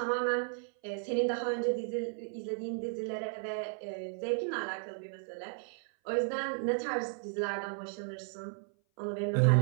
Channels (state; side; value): silent; left; 55 dB below the other